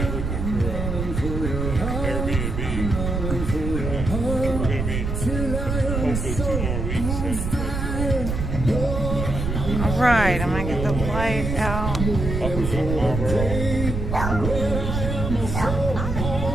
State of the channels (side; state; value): right; noise; rumble, 3 dB below the sound